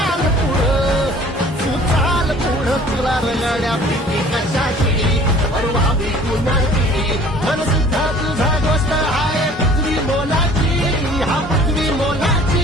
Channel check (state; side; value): normal; both; correlation 0.50